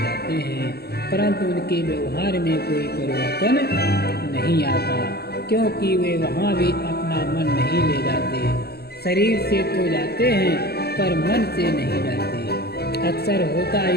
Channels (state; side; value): late; right; 0.47 ms